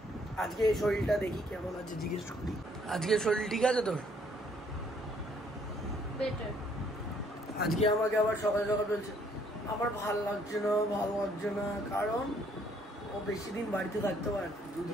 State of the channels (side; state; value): both; normal; correlation 0.65